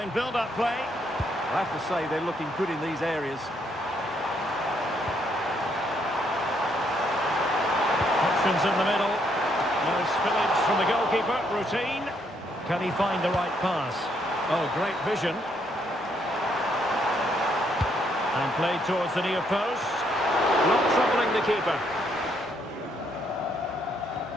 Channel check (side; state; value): both; normal; correlation 0.72